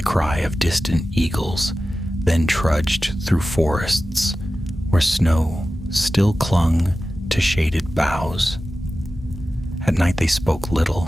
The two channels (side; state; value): both; normal; correlation 0.94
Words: cry of distant eagles, then trudged through forests where snow still clung to shaded boughs. At night they spoke little,